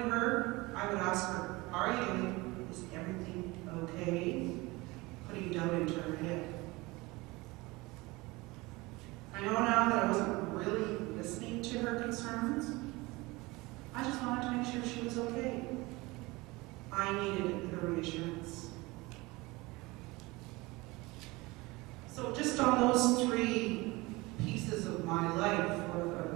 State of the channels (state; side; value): quieter; left; 22.6 dB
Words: her, I would ask her, how are you doing? Is everything okay? Putting doubt into her head. I know now that I wasn't really listening to her concerns. I just wanted to make sure she was okay. I needed the reassurance. So just on those three pieces of my life, or